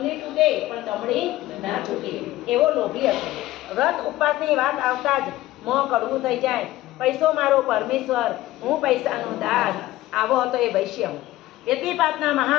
તૂટે પણ દમડી ના છૂટે એવો લોભી હતો। વ્રત ઉપવાસની વાત આવતા જ મોં કડવું થઈ જાય। પૈસો મારો પરમેશ્વર, હું પૈસાનો દાસ, આવો હતો એ વૈશ્ય। વ્યતિપાતના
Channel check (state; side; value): quieter; right; 16.2 dB